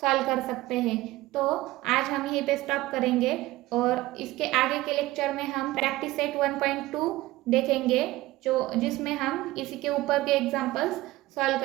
सॉल्व कर सकते हैं। तो आज हम यहीं पे स्टॉप करेंगे और इसके आगे के लेक्चर में हम प्रैक्टिस सेट 1.2 देखेंगे, जो जिसमें हम इसी के ऊपर के एग्जाम्पल्स सॉल्व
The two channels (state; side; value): quieter; left; 18.0 dB